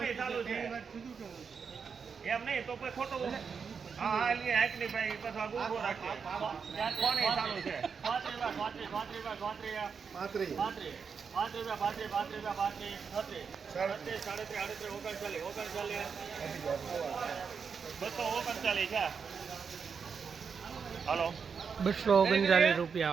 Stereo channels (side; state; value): left; quieter; 6.0 dB